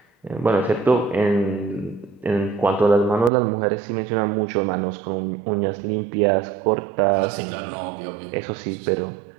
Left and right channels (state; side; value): drops out; left; at 3.3 s